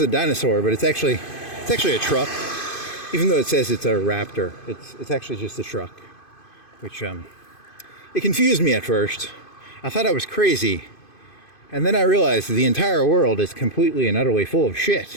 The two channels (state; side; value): late; right; 2.5 ms